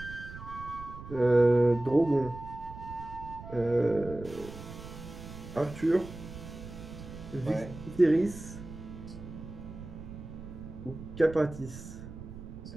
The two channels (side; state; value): right; noise; rumble, 13 dB below the sound